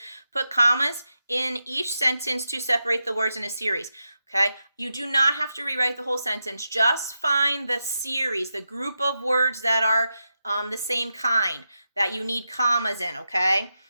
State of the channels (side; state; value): both; inverted; correlation -0.88